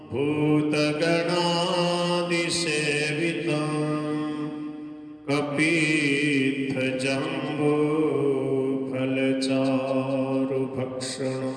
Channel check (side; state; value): both; identical; correlation 1.00